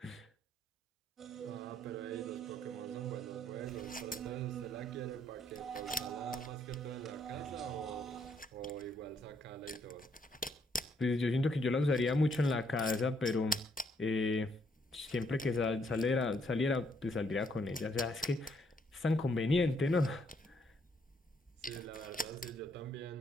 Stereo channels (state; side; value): normal; both; correlation 0.71